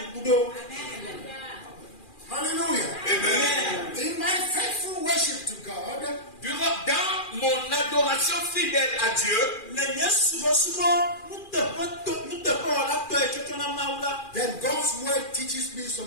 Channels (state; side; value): late; right; 2.4 ms